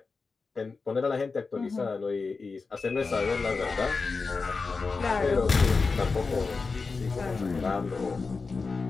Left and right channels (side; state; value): right; quieter; 4.4 dB